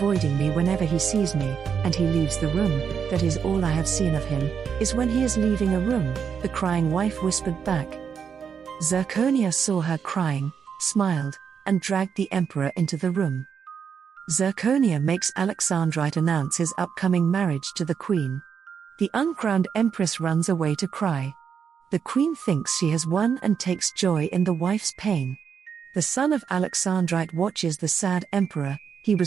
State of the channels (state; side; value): quieter; left; 7.0 dB